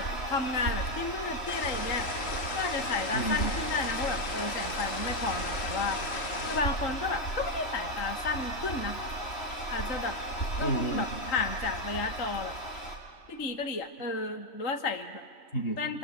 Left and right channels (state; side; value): late; right; 3.1 ms